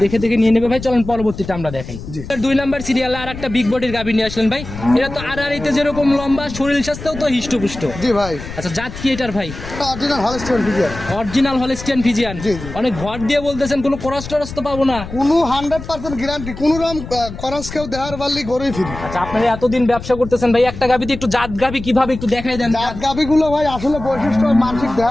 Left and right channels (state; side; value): noise; left; rumble, 11 dB below the sound